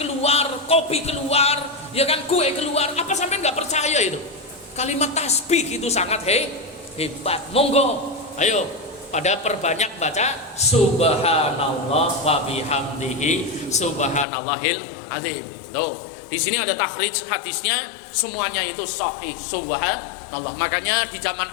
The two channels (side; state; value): right; drops out; at 14.2 s